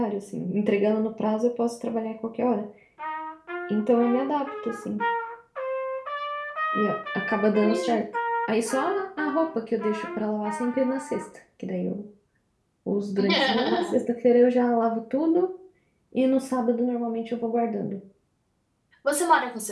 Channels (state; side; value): identical; both; correlation 1.00